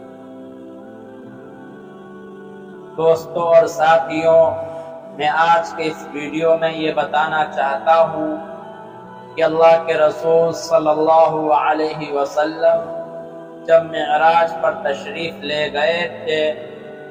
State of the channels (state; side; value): identical; both; correlation 1.00